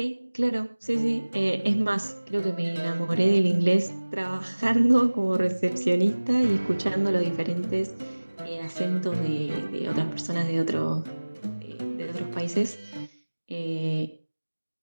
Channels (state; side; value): inverted; both; correlation -1.00